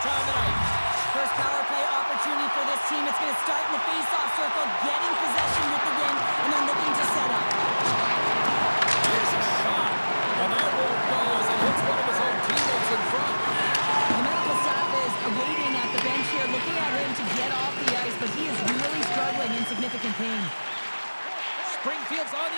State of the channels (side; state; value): both; inverted; correlation -1.00